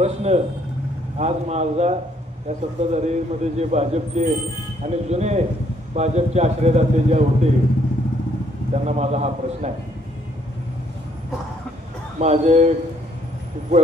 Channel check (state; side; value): normal; both; correlation 0.67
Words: आज माझा या सत्ताधारीमध्ये जे भाजपचे आणि जुने भाजपचे आश्रयदाते जे होते त्यांना माझा हा प्रश्न आहे. माझे